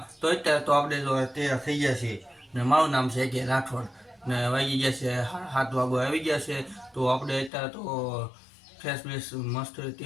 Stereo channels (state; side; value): drops out; right; at 7.5 s